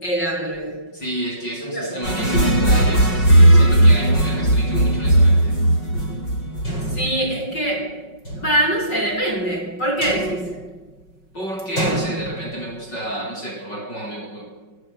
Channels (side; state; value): right; late; 5.4 ms